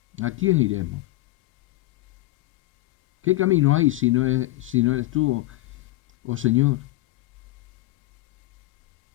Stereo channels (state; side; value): quieter; right; 18.0 dB